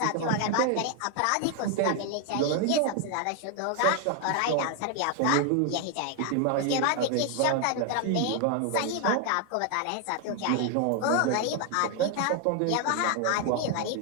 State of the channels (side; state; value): both; different; correlation 0.01